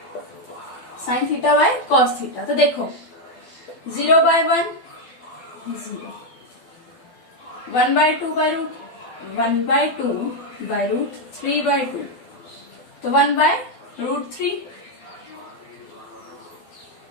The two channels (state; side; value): late; right; 12 ms